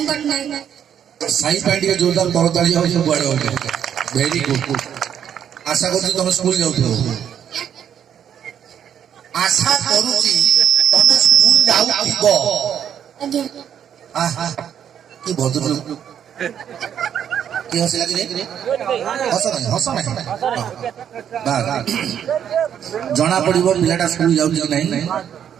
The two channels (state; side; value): quieter; left; 9.1 dB